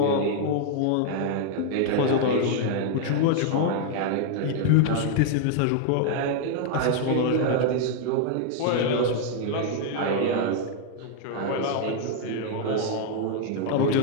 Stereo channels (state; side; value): different; both; correlation 0.00